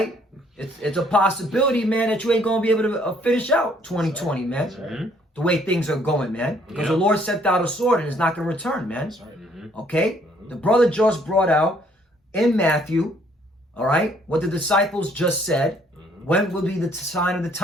It's a possibility, man, that you ain't going to be able to finish out 2020, man. Right. The way things are going, man. Because the Lord sent out a sword and it's not going to return, man. That's right. Okay. The brother just brought out in Matthew, all right, what the disciples just said. When will be the sign of the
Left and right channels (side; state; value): both; normal; correlation 0.64